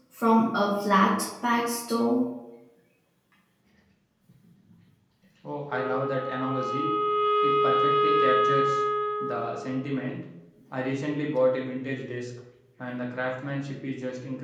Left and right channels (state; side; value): identical; both; correlation 1.00